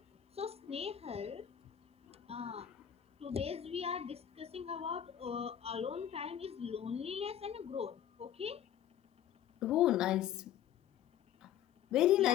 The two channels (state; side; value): quieter; right; 10.4 dB